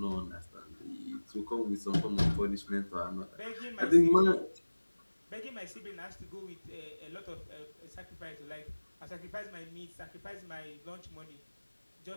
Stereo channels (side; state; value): both; inverted; correlation -1.00